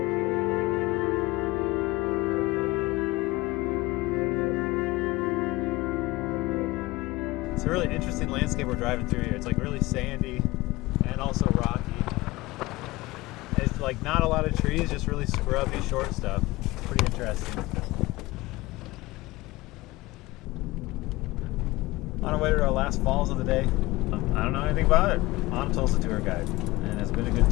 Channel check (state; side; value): quieter; right; 20.3 dB